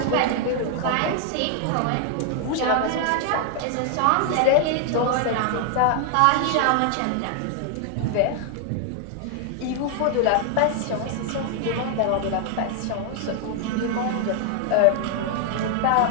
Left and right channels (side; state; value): both; different; correlation 0.00